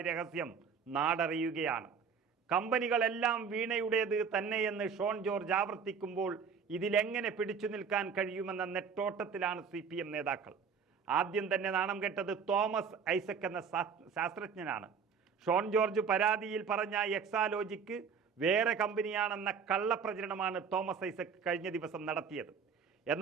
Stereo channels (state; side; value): quieter; left; 6.2 dB